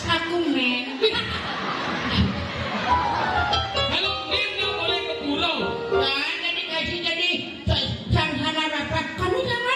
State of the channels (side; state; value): both; identical; correlation 1.00